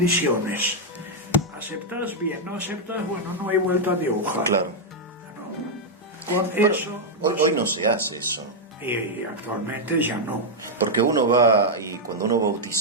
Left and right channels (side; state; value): both; normal; correlation -0.02